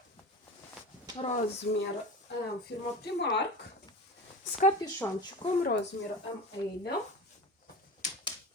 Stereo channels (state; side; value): normal; both; correlation 0.31